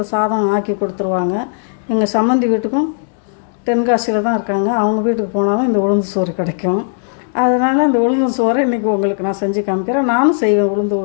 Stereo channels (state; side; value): silent; right; digital silence